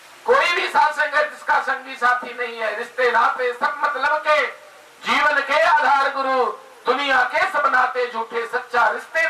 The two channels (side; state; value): both; identical; correlation 1.00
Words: कोई भी साथ संगत इसका संगी साथी नहीं है। रिश्ते नाते सब मतलब के, जीवन के आधार गुरु, दुनिया के सब नाते झूठे, सच्चा